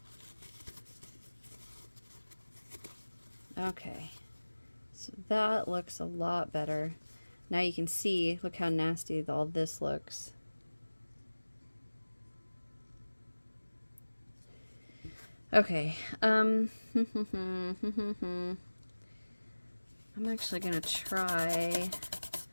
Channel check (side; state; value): both; inverted; correlation -1.00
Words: Okay, so that looks a lot better. Now you can see, look how nasty all this looks. Okay, I'm actually gonna try,